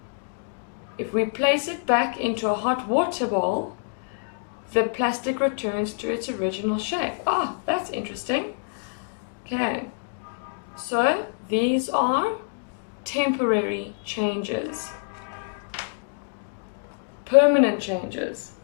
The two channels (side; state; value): right; silent; digital silence